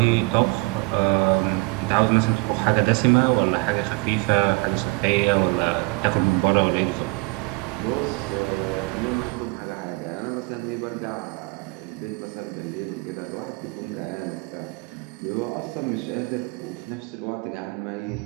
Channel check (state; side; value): quieter; left; 27.6 dB